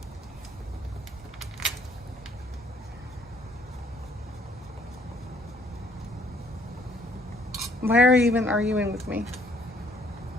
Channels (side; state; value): both; normal; correlation 0.63